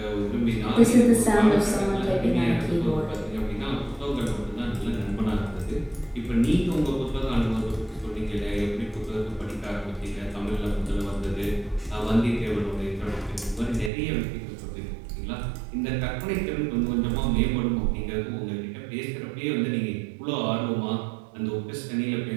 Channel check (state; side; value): drops out; left; at 13.9 s